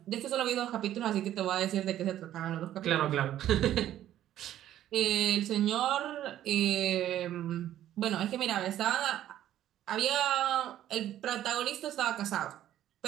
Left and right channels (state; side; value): quieter; left; 12.2 dB